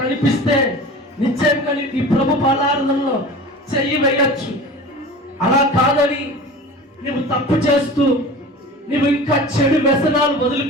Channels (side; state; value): both; normal; correlation 0.37